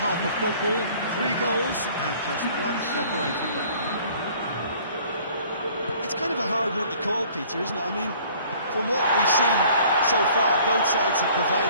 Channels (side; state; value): both; inverted; correlation -0.54